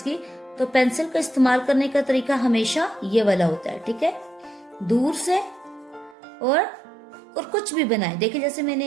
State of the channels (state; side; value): drops out; left; at 6.2 s